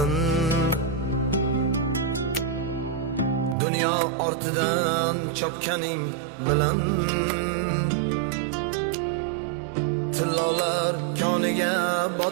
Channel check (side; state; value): left; drops out; at 3.6 s